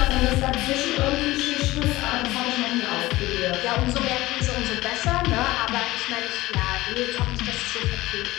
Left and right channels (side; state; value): right; quieter; 18.3 dB